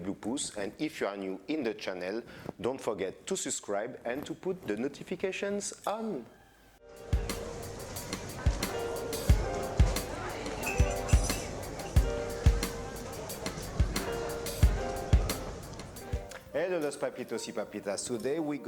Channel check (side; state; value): both; identical; correlation 1.00